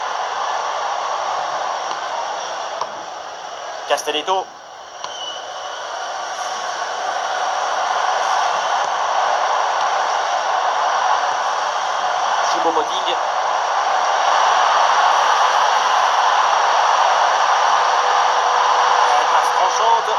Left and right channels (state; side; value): identical; both; correlation 1.00